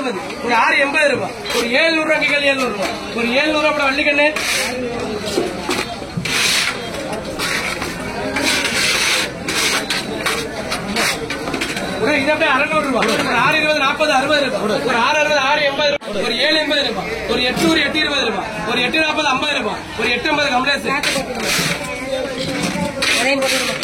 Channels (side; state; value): both; identical; correlation 1.00